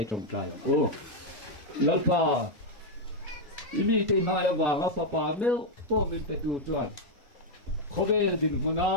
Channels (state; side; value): normal; both; correlation 0.00